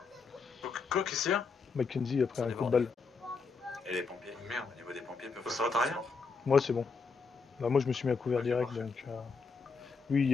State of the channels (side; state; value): right; quieter; 4.7 dB